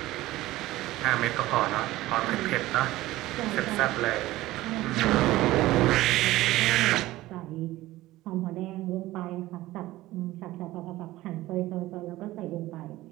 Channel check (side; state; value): left; quieter; 17.1 dB